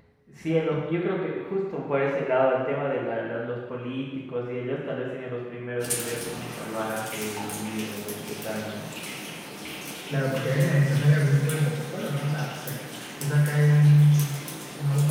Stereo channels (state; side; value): identical; both; correlation 1.00